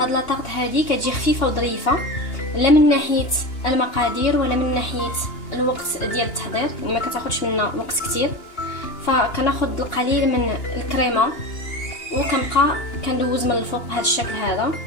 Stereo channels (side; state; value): right; late; 2.8 ms